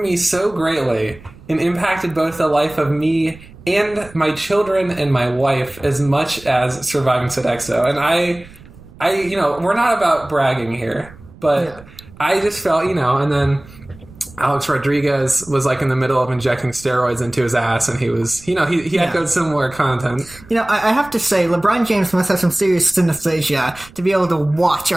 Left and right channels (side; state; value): right; noise; rumble, 21 dB below the sound